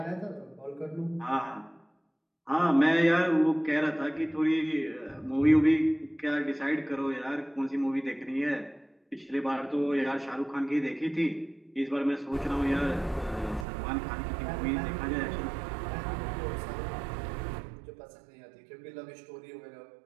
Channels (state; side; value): drops out; left; at 13.7 s